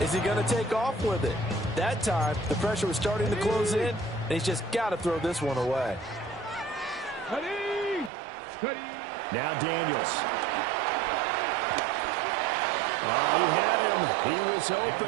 he going to take off with it? That time, the pressure was starting to close in, and he's just got to throw this one away. Now Daniels. He had him. He was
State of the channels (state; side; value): drops out; left; at 8.1 s